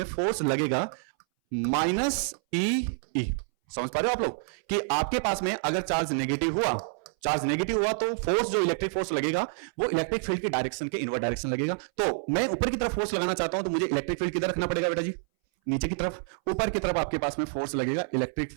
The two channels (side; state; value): left; silent; 59 dB below the other